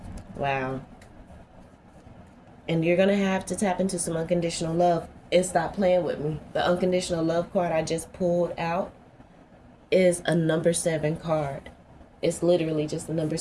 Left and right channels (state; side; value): identical; both; correlation 1.00